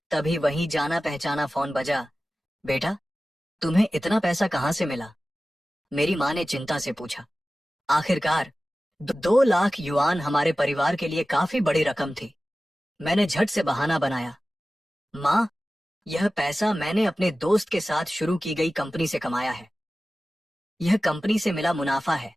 तभी वही जाना पहचाना फोन बजा। बेटा, तुम्हें इतना पैसा कहाँ से मिला? मेरी माँ ने चिंता से पूछा। आखिरकार 2 लाख युआन हमारे परिवार के लिए काफी बड़ी रकम थी। मैंने झट से बहाना बनाया, माँ, यह पैसा मैंने अपने दोस्त के साथ शुरू की गई कंपनी से कमाया है। यह कंपनी से मिला मुनाफा है।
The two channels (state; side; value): normal; both; correlation 0.96